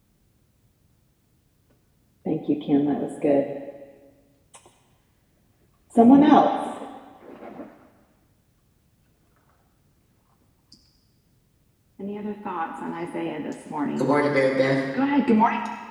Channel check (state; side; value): identical; both; correlation 1.00